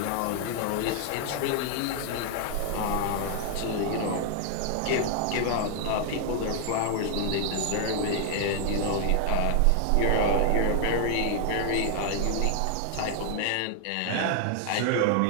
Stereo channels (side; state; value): both; different; correlation 0.00